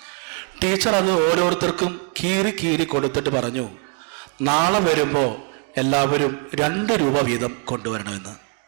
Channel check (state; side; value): quieter; left; 34.2 dB